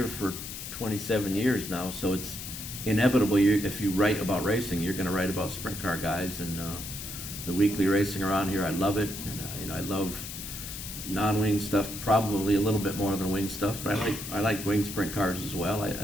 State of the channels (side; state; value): left; noise; hiss, 9 dB below the sound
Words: for 27 years now, so it's inevitable. If you write about racing, you're going to write about sprint car guys. And the weekly racing around here, I love it, and you know, I love non-wing stuff probably a little bit more than wing stuff, but I like wing sprint cars as well.